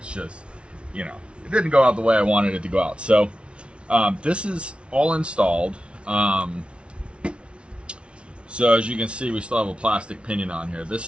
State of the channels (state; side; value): late; left; 0.059 ms